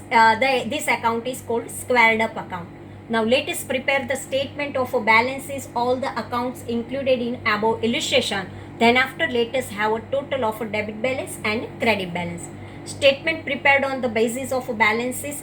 this account is called squared up account. Now, let us prepare the statement of balances, all the accounts included in above illustration. Then after, let us have a total of debit balance and credit balance. Statement prepared on the basis of balances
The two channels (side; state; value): both; identical; correlation 1.00